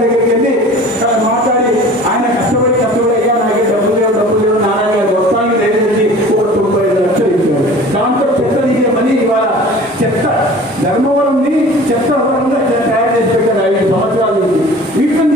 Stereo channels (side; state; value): both; normal; correlation 0.44